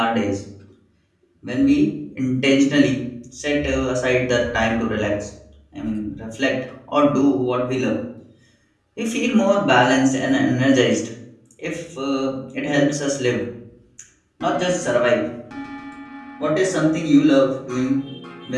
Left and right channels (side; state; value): both; identical; correlation 1.00